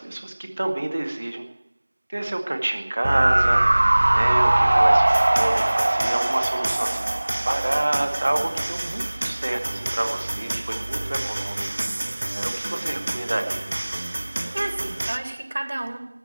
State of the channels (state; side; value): inverted; both; correlation -1.00